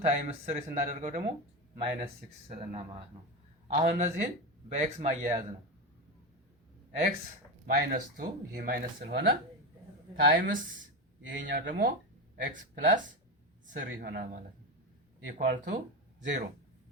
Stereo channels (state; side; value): normal; both; correlation 0.17